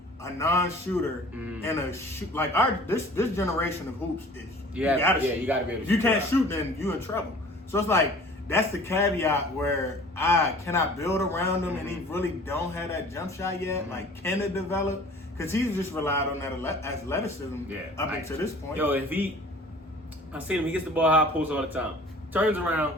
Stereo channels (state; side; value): normal; both; correlation 0.47